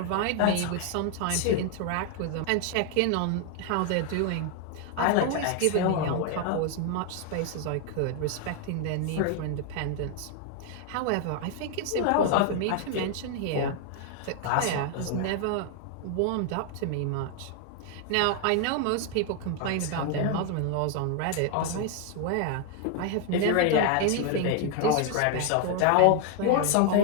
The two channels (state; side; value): different; both; correlation 0.00